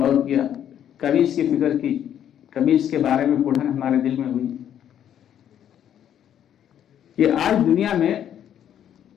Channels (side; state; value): right; quieter; 10.0 dB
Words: غور کیا، کبھی اس کی فکر کی، کبھی اس کے بارے میں پڑھن ہمارے دل میں ہوئی کہ آج دنیا میں